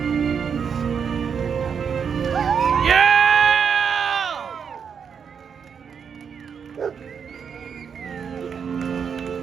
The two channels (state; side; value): quieter; left; 6.9 dB